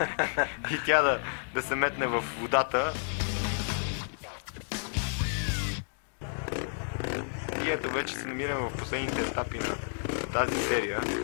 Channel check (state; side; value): silent; right; digital silence